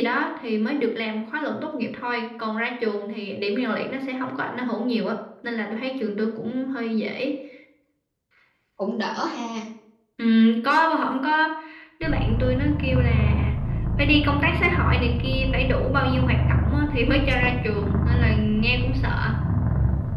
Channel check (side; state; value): both; identical; correlation 1.00